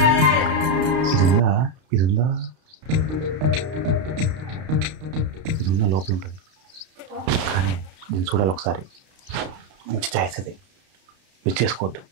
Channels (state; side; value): late; left; 32 ms